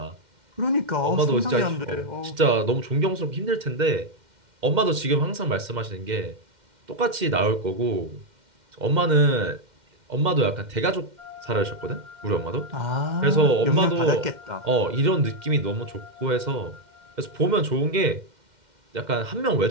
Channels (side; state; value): left; late; 2.1 ms